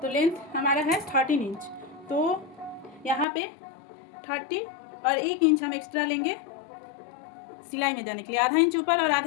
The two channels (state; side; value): drops out; right; at 3.2 s